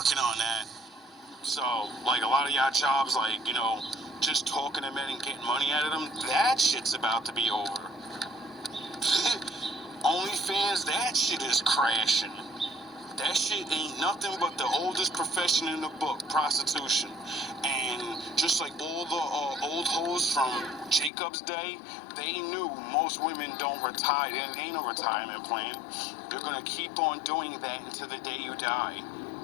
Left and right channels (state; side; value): drops out; right; at 21.1 s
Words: on that. So, like, a lot of y'all jobs, like, just talking to men and getting money out of them, that shit's about to be over. OnlyFans, that shit is crashing. That shit ain't nothing but the oldest profession in the book, prostitution. And just like all the old hoes from Jacob's day, they knew most women don't retire. There ain't no retirement plan. You're gonna keep on doing that until the day you die.